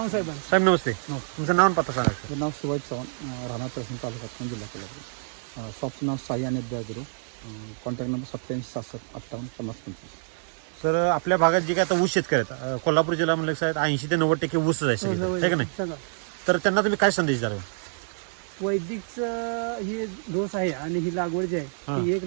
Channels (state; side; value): silent; left; digital silence